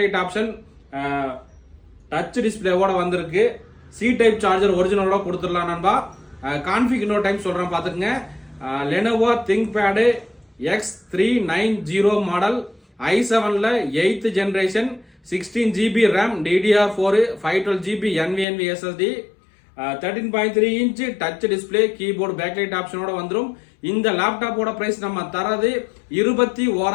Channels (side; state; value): right; drops out; at 18.4 s